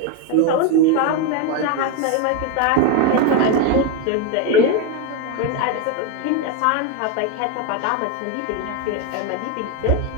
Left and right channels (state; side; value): different; both; correlation 0.02